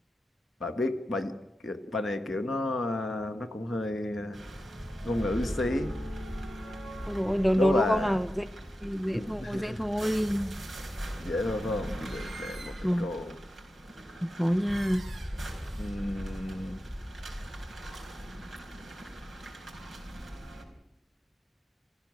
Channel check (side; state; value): both; normal; correlation 0.91